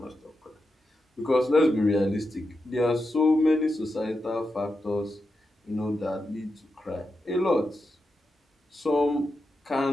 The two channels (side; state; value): both; normal; correlation 0.88